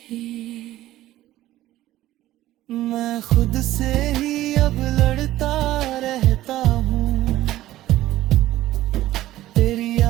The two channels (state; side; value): quieter; left; 15.0 dB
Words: है। मैं खुद से ही अब लड़ता रहता हूँ, तेरी